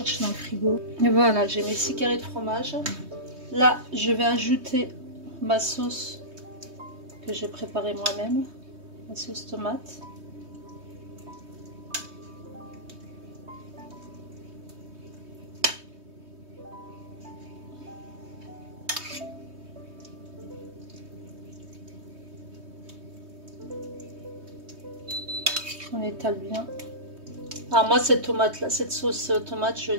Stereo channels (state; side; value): late; left; 3.2 ms